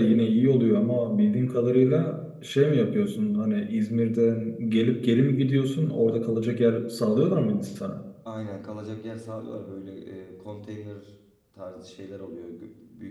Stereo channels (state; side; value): identical; both; correlation 1.00